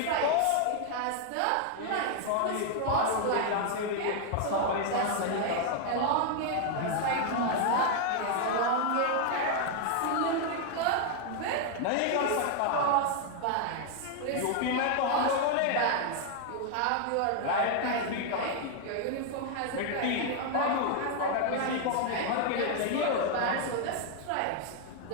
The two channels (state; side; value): different; both; correlation 0.00